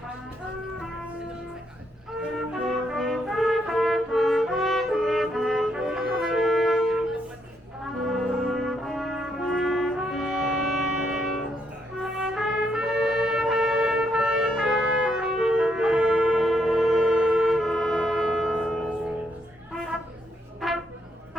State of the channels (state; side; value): normal; both; correlation 0.75